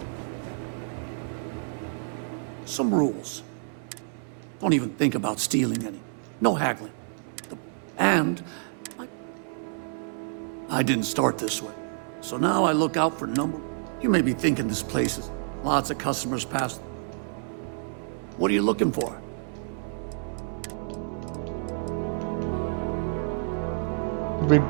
Some rules. Don't even think about stealing any. No haggling. And I didn't start this way. So now I look out for number. You may be thinking this place is lots of customers pass. What are you looking for?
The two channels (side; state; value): left; silent; 59 dB below the other